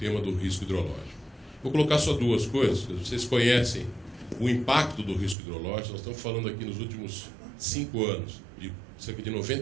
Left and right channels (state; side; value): drops out; left; at 5.4 s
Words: do risco hidrológico. Vou colocar só duas coisas. Vocês conhecem o impacto do risco hidrológico. Nós estamos falando aqui nos últimos 5 anos de cerca de